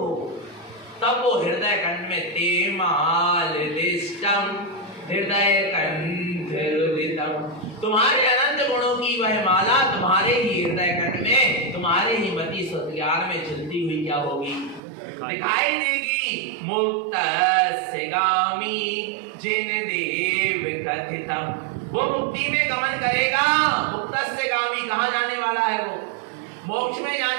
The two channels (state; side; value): drops out; left; at 14.8 s